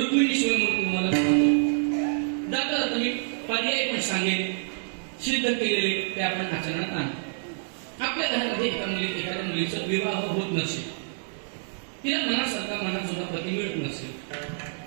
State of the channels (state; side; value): silent; left; digital silence